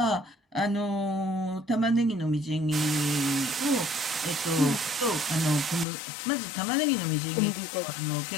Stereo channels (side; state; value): right; drops out; at 5.9 s